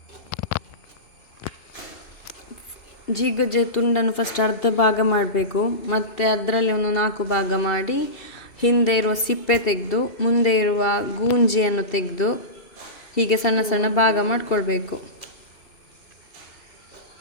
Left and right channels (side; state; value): right; late; 2.7 ms